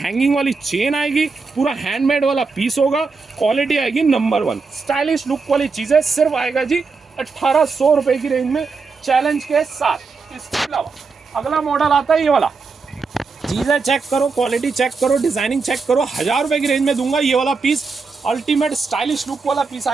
वाली चेन आएगी, पूरा हैंडमेड वाला पीस होगा, क्वालिटी आएगी नंबर 1, स्टाइलिश लुक वाली चीज़ें, सिर्फ आएगा जी 1800 रुपये की रेंज में, चैलेंज के साथ। इसके अलावा अगला मॉडल आता है ये वाला, चीज़ें चेक करो, क्वालिटी चेक करो, डिजाइनिंग चेक करो, 1000 रुपये की रेंज में दूंगा ये वाला पीस, अल्टीमेट स्टाइलिश लुक वाला पीस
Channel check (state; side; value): quieter; left; 4.5 dB